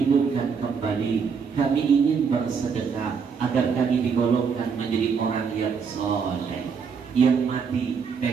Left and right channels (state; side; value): quieter; left; 6.0 dB